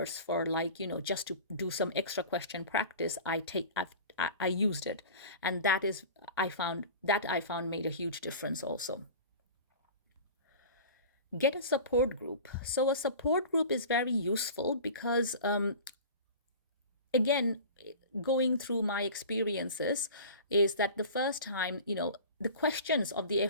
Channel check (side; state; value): both; inverted; correlation -0.38